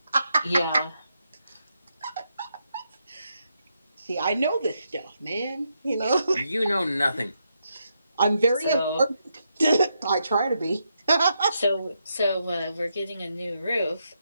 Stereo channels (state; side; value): inverted; both; correlation -0.81